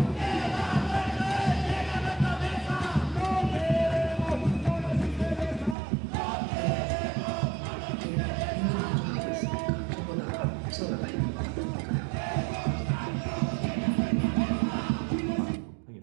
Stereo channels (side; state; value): left; drops out; at 5.8 s